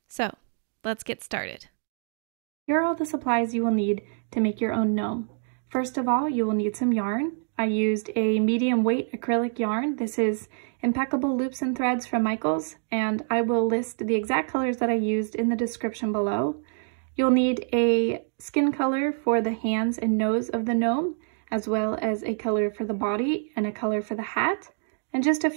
So, let's get started. Here are all the supplies you will need to make your own gnome. First of all, you will need some yarn. I used a medium weight acrylic yarn. This is Impeccable Loops and Threads from Michaels, and I will list the exact colors that I used in the description below. You'll need a skin color for the hands and nose of the gnome, as well as a color for the body and a color for the hat, and just a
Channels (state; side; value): silent; left; digital silence